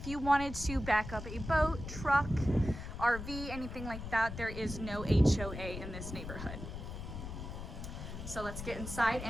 you wanted to back up a boat, truck, RV, anything like that, there is no HOA in this neighborhood. So let's get inside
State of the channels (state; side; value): noise; left; rumble, 8 dB below the sound